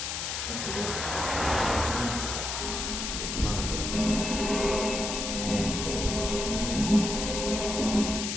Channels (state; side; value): noise; left; hiss, 3 dB below the sound